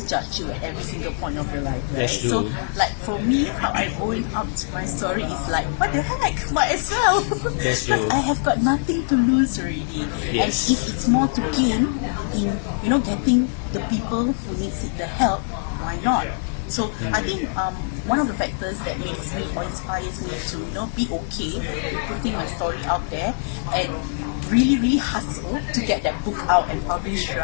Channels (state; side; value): silent; right; digital silence